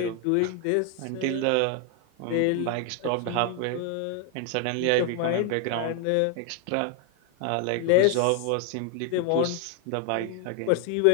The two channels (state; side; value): different; both; correlation 0.01